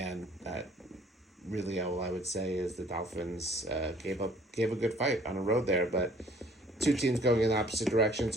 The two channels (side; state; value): both; normal; correlation 0.57